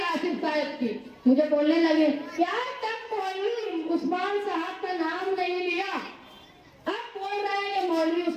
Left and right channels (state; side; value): identical; both; correlation 1.00